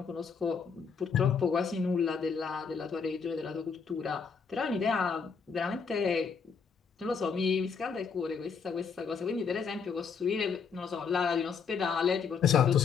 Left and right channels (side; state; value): right; quieter; 5.9 dB